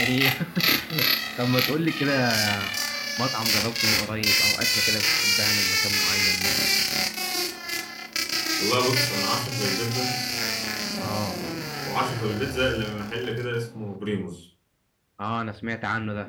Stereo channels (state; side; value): identical; both; correlation 1.00